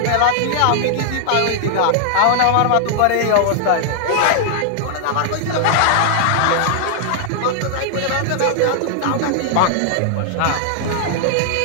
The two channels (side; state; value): both; different; correlation -0.01